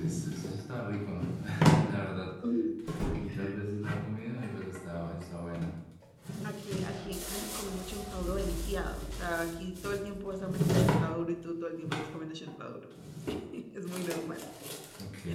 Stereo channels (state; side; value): identical; both; correlation 1.00